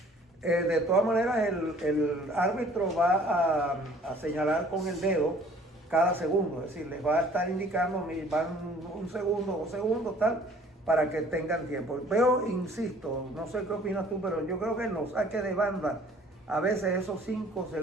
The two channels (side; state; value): both; normal; correlation 0.54